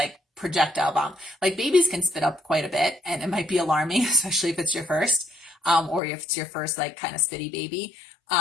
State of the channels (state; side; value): drops out; right; at 6.0 s